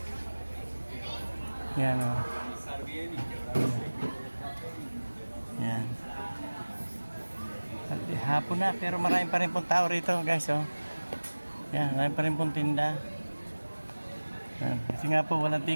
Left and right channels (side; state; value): both; inverted; correlation -1.00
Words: Yan, oh. Yan. Hapon na pero maraming pa rin pong tao rito guys, oh. Yan, maraming pa rin pong tinda. Yan. Kasi nga po walang